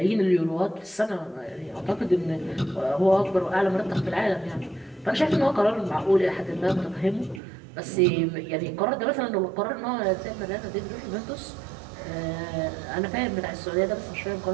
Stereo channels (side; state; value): left; drops out; at 7.4 s